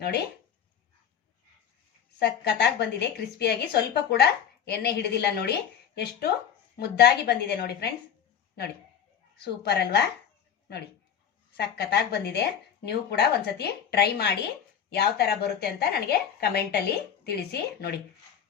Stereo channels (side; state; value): right; quieter; 8.4 dB